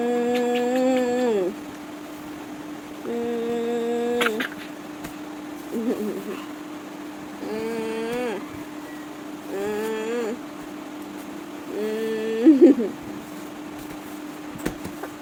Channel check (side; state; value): both; identical; correlation 1.00